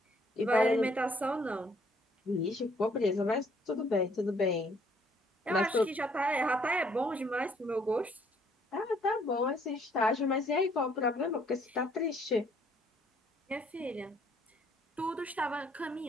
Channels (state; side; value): normal; both; correlation 0.65